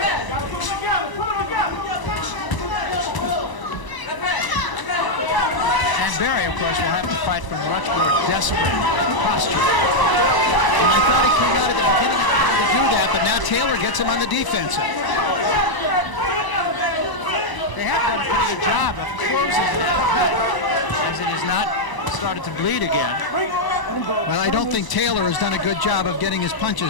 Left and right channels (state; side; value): late; right; 1.0 ms